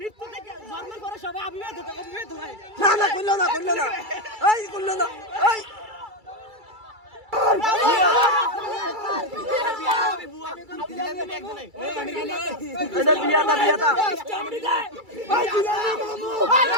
মৃত্যু থেকে জন্মের পরে সবাই অবিবাহিত হয় না না কইলো না এই কইলো না এই এটা বিয়াটা বিয়াটা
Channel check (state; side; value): late; left; 2.3 ms